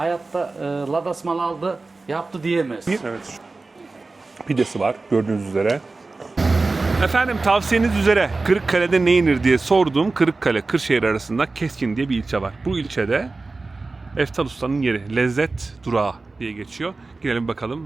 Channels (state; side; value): quieter; left; 3.6 dB